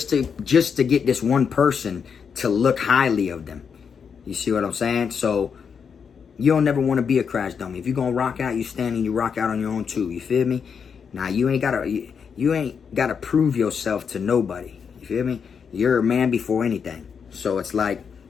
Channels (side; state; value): right; quieter; 6.6 dB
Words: to get this one person to look highly of them, you see what I'm saying? So you don't never want to be a crash dummy. If you're gonna rock out, you stand and you rock out on your own too. You feel me? Now you ain't gotta prove yourself to nobody. You feel me? You're a man before anything. So it's like,